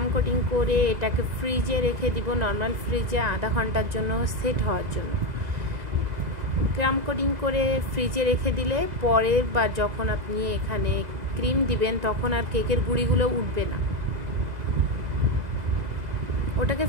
কোটিং করে এটাকে ফ্রিজে রেখে দিব, নর্মাল ফ্রিজে আধা ঘন্টার জন্য সেট হওয়ার জন্য। ক্রাম কোটিং করে ফ্রিজে রেখে দিলে পরে বা যখন আপনি এখানে ক্রিম দিবেন তখন আর কেকের গুঁড়িগুলো উঠবে না। ওটাকে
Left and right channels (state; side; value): late; left; 2.0 ms